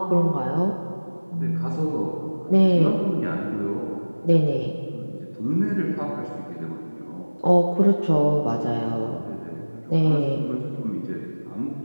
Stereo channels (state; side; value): inverted; both; correlation -1.00